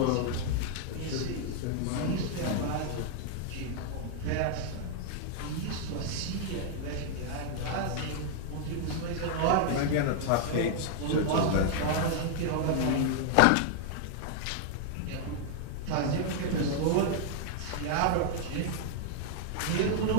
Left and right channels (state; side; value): different; both; correlation 0.00